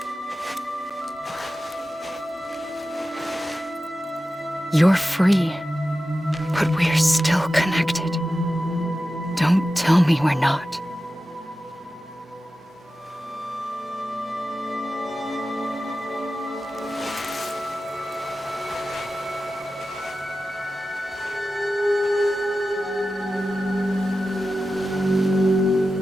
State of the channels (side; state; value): both; normal; correlation 0.93